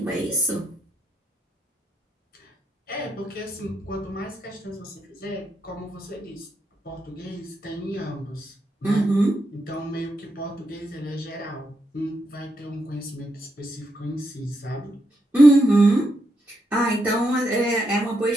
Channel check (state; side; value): normal; both; correlation 0.81